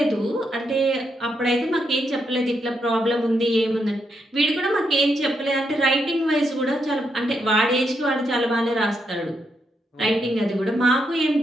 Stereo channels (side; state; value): both; normal; correlation 0.80